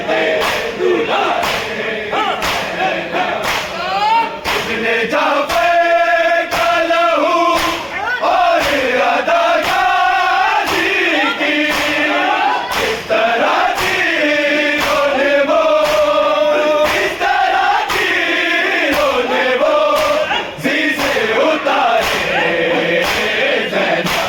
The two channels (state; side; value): identical; both; correlation 1.00